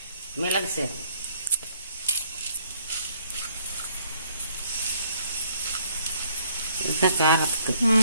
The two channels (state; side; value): inverted; both; correlation -0.64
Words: மிளகு சீரகம், இதுதான் காரத்துக்கு.